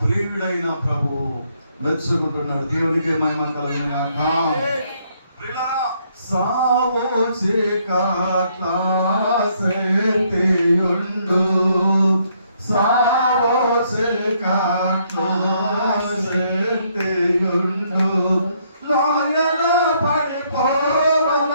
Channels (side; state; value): both; inverted; correlation -0.70